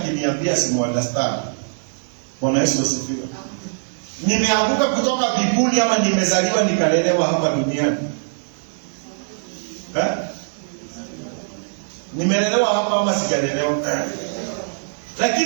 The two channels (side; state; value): left; silent; digital silence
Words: simu understand. Bwana Yesu asifiwe. Nimeanguka kutoka mbinguni ama nimezaliwa nikalelewa hapa duniani? Nimelelewa hapa ama sijalelewa?